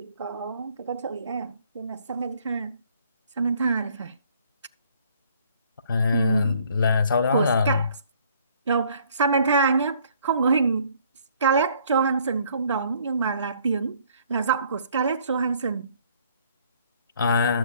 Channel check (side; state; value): both; inverted; correlation -0.61